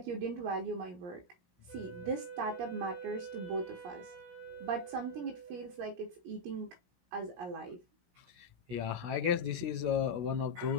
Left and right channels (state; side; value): late; left; 16 ms